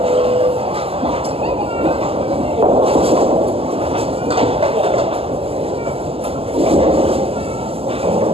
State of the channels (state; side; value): late; left; 0.28 ms